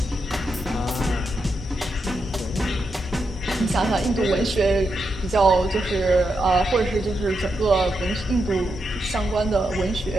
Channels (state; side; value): normal; both; correlation 0.84